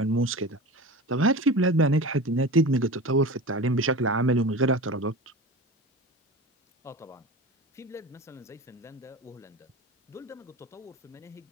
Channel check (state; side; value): normal; both; correlation 0.31